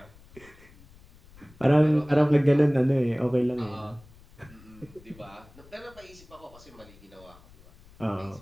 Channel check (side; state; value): left; noise; rumble, 24 dB below the sound